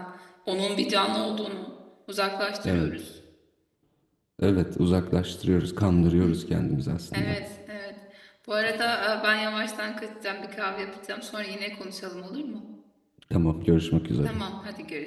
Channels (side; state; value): both; identical; correlation 1.00